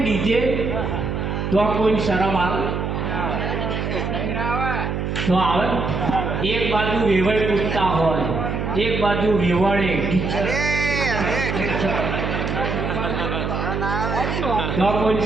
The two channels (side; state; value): right; noise; hum, 2 dB below the sound